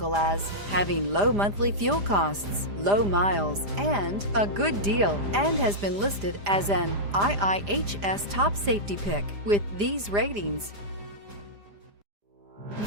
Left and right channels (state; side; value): late; left; 5.0 ms